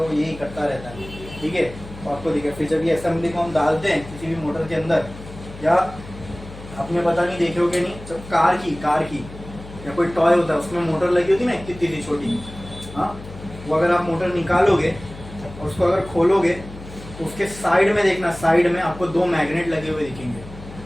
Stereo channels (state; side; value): noise; left; hum, 15 dB below the sound